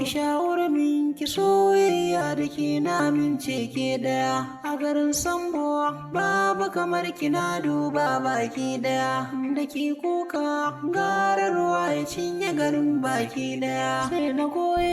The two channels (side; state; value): both; identical; correlation 1.00